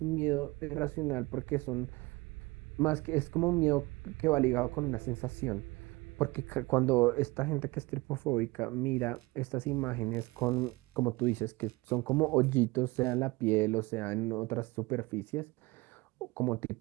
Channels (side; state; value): left; quieter; 22.9 dB